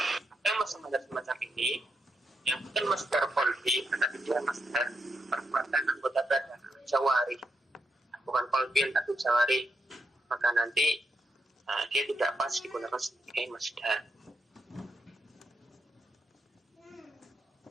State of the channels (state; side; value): normal; both; correlation 0.83